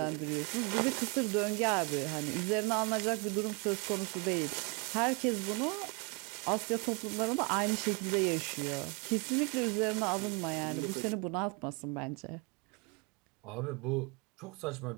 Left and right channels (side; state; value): left; quieter; 31.6 dB